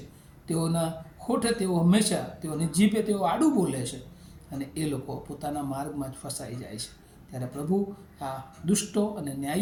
તેઓના હોઠે તેઓ હંમેશા, તેઓની જીભે તેઓ આડું બોલે છે, અને એ લોકો પોતાના માર્ગમાં જ ફસાઈ જાય છે. ત્યારે પ્રભુ આ દુષ્ટો અને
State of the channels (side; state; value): both; identical; correlation 1.00